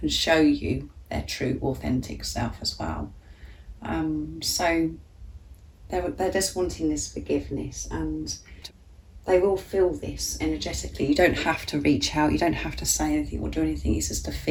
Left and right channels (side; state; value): both; identical; correlation 1.00